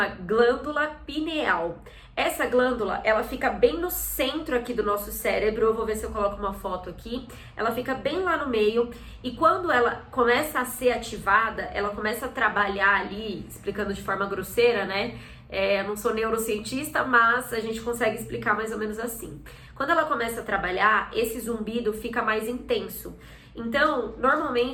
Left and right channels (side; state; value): both; identical; correlation 1.00